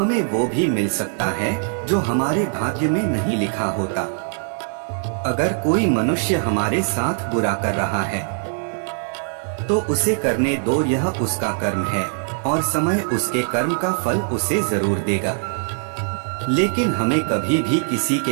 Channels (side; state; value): left; silent; 62 dB below the other